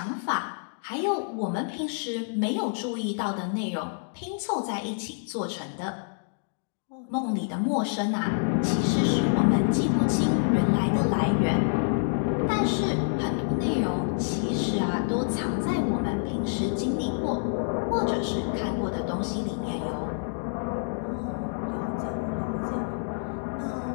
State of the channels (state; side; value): silent; right; digital silence